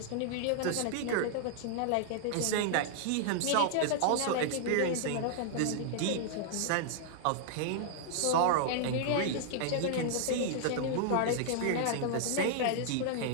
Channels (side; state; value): both; different; correlation -0.01